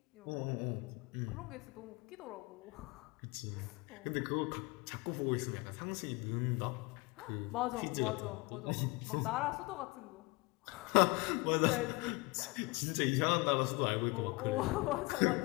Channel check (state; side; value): quieter; right; 25.4 dB